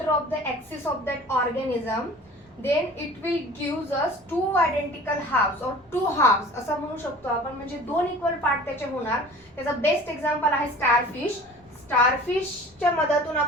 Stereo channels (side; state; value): both; normal; correlation 0.44